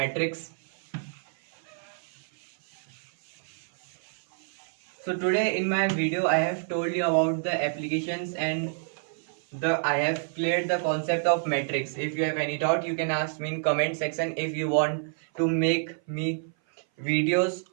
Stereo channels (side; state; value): left; silent; 56 dB below the other